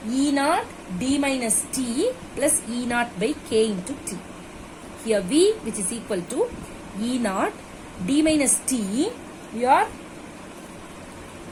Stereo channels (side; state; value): both; identical; correlation 1.00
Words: E naught d minus t plus E naught by k into t. Here V, which is equal to E naught d minus t, we are